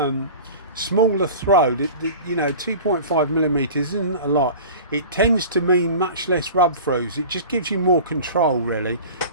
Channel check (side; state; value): both; inverted; correlation -0.38